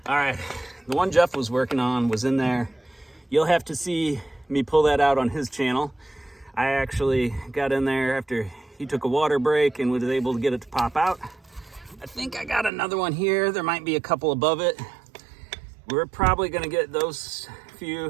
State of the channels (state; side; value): drops out; left; at 12.7 s